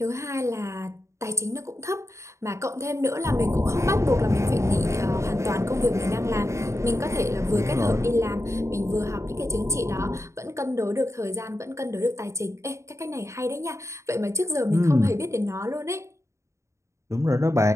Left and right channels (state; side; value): late; left; 0.14 ms